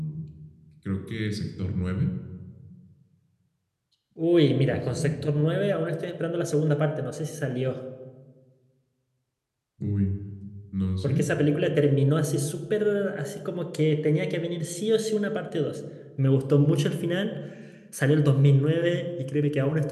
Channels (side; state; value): both; identical; correlation 1.00